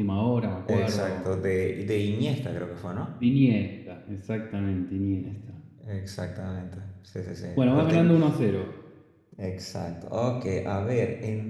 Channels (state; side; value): identical; both; correlation 1.00